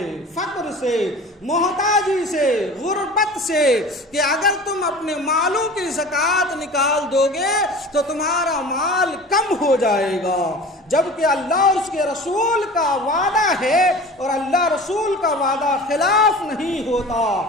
فقر سے، محتاجی سے، غربت سے، کہ اگر تم اپنے مالوں کی زکوٰۃ نکال دو گے تو تمہارا مال کم ہو جائے گا، جبکہ اللہ اور اس کے رسول کا وعدہ ہے اور اللہ رسول کا وعدہ خلاف نہیں ہوتا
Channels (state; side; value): normal; both; correlation 0.39